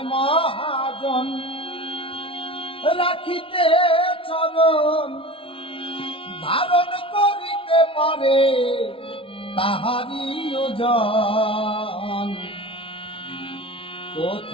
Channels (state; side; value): late; right; 0.26 ms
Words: মহাজন রাখিতে চরণ, ধারণ করিতে পারে তাহারি ওজন।